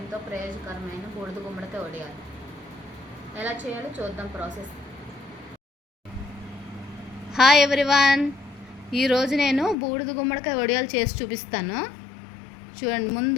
ప్రయోజనకరమైన బూడిద గుమ్మడికాయ వడియాలు ఎలా చేయాలో చూద్దాం ప్రాసెస్. Hi everyone. ఈరోజు నేను బూడిద గుమ్మడికాయ వడియాలు చేసి చూపిస్తాను. చూడండి,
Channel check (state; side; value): drops out; right; at 9.8 s